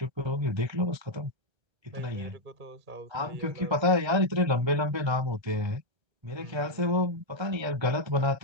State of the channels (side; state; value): left; late; 1.3 ms